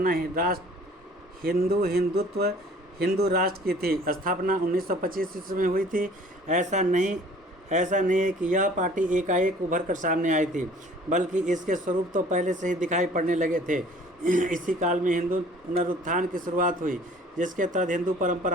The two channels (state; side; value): normal; both; correlation 0.52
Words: है हिंदू राष्ट्र की थी। स्थापना 1925 ईस्वी में हुई थी। ऐसा नहीं है कि यह पार्टी एकाएक उभर कर सामने आई थी, बल्कि इसके स्वरूप तो पहले से ही दिखाई पड़ने लगे थे। इसी काल में हिंदू पुनरुत्थान की शुरुआत हुई, जिसके तहत हिंदू